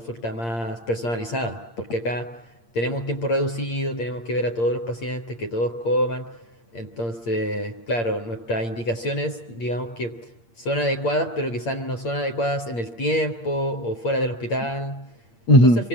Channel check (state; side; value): late; right; 8.7 ms